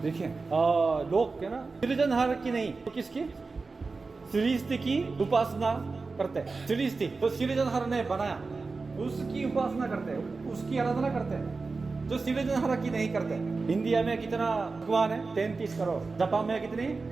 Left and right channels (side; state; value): left; quieter; 4.0 dB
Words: देखिए लोग क्या ना, सृजनहार की नहीं तो किसकी? सृष्टि की उपासना करते हैं। सृष्टि तो सृजनहार ने बनाया, उसकी उपासना करते हैं, उसकी आराधना करते हैं, जो सृजनहार की नहीं करते। इंडिया में कितना भगवान है? 33 करोड़। जापान में कितनी?